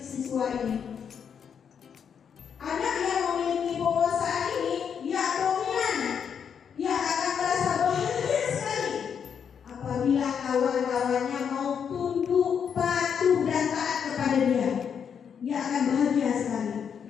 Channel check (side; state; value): right; quieter; 7.4 dB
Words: siswa ini. Anak yang memiliki penguasaan ini, dia dominan. Dia akan merasa bahagia sekali apabila kawan-kawannya mau tunduk, patuh, dan taat kepada dia. Dia akan bahagia sekali.